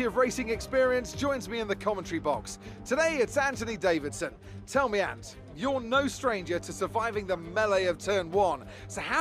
of racing experience joins me in the commentary box. Today it's Anthony Davidson. Tell me, Ant, you're no stranger to surviving the melee of turn 1. So how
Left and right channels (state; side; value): identical; both; correlation 1.00